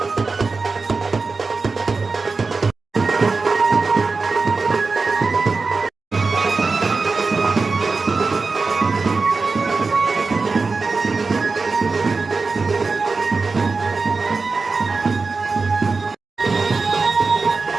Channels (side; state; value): left; quieter; 4.2 dB